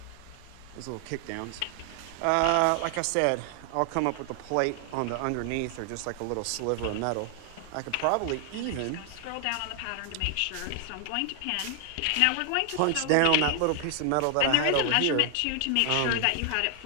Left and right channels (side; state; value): both; different; correlation 0.00